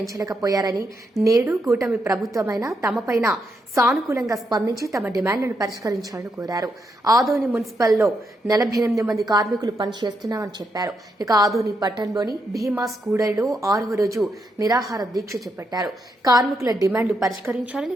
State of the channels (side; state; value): both; normal; correlation 0.81